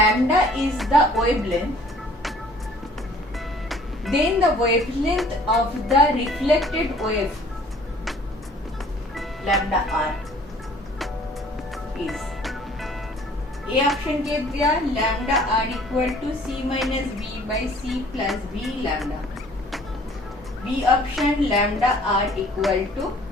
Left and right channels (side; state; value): both; normal; correlation 0.54